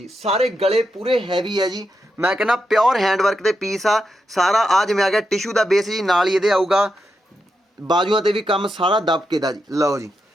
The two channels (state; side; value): normal; both; correlation 0.85